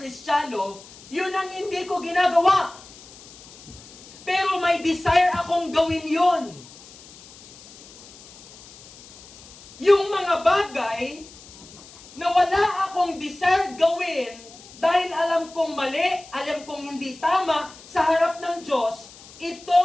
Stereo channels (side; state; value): left; noise; hiss, 20 dB below the sound